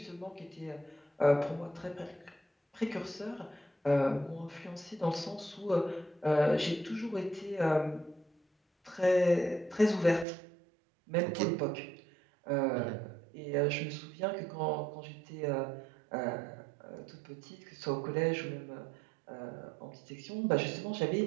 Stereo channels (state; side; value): drops out; left; at 10.2 s